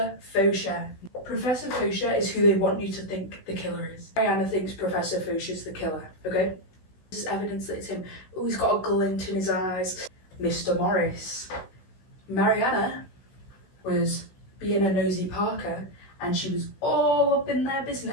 Faucher. Professor Faucher is who they want you to think the killer is. Mariana thinks Professor Faucher's the killer, okay? This is evidence that it's him. Oh, he's got a glint in his eyes. Mr. Morris. Mariana was being a nosy Parker, and she was all up in their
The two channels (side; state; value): right; late; 16 ms